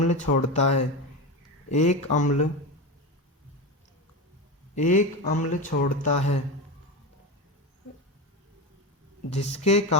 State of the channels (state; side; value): normal; both; correlation 0.20